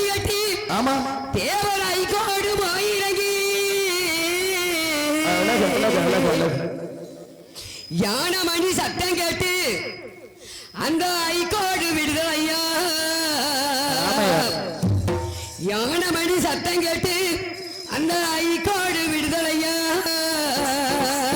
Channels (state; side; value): identical; both; correlation 1.00